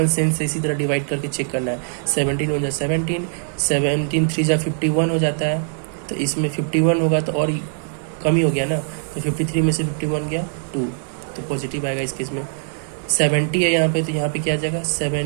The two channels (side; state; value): left; silent; digital silence